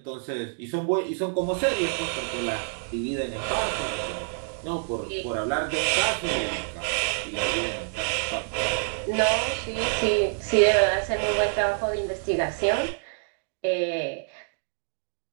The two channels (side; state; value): left; silent; 60 dB below the other